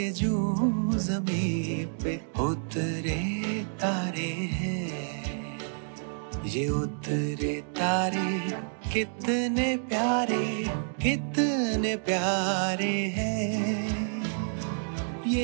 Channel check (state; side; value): silent; left; digital silence